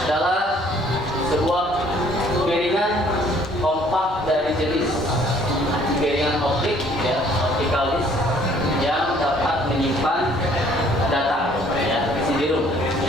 adalah sebuah piringan kompak dari jenis piringan optik, ya, optical disk yang dapat menyimpan data, ya, CD-ROM,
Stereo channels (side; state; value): both; normal; correlation 0.59